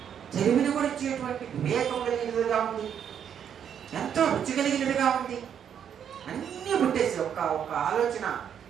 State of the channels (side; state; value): left; quieter; 8.5 dB